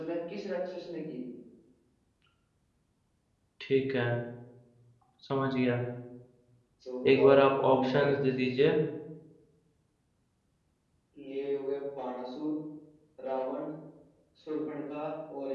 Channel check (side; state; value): both; identical; correlation 1.00